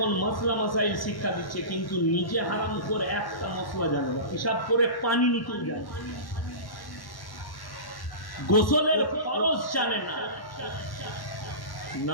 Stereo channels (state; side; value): late; right; 1.1 ms